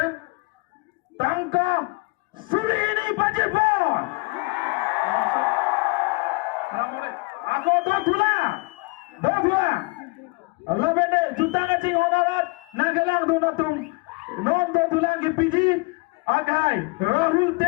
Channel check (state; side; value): quieter; right; 27.1 dB